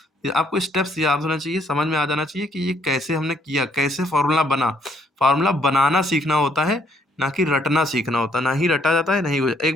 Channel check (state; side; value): normal; both; correlation 0.68